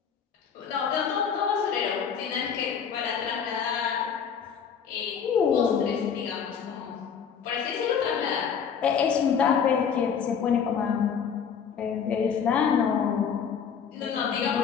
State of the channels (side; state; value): right; quieter; 7.1 dB